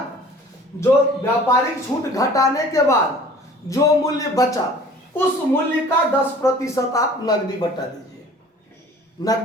जो व्यापारिक छूट घटाने के बाद जो मूल्य बचा उस मूल्य का 10% आप नगदी बट्टा दीजिए।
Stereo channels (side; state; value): both; normal; correlation 0.48